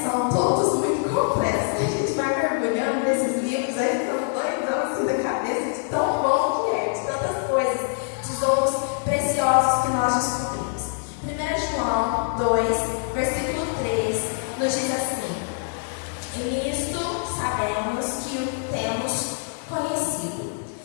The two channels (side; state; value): right; silent; digital silence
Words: são todos muito complexos. A gente vai mergulhando nesses livros, aí ficamos doidão assim da cabeça de tão bom que é, de tantas coisas, tesouros preciosos que nós descobrimos. 1 João 2, versículo 3, nos diz assim: e nisto sabemos que o temos conhecido,